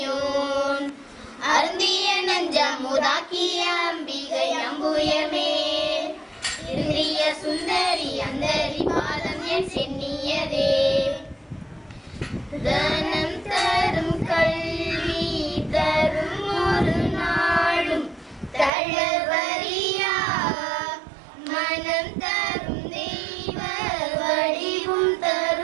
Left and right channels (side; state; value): left; drops out; at 18.7 s